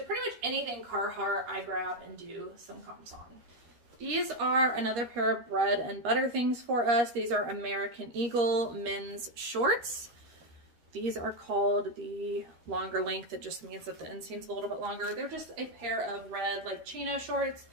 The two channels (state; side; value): late; left; 13 ms